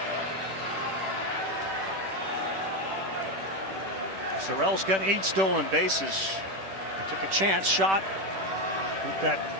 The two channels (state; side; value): late; left; 10 ms